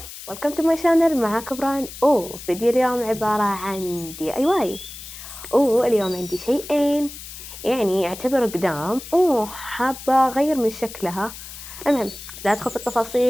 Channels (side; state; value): left; noise; hiss, 13 dB below the sound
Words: to my channel. معاك بران. فيديو اليوم عبارة عن DIY. اليوم عندي شيئين، يعني يعتبر قدام، حابة أغير من شكلها. المهم لا أدخل في